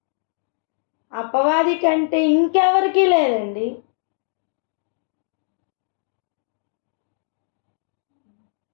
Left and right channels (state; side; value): silent; right; digital silence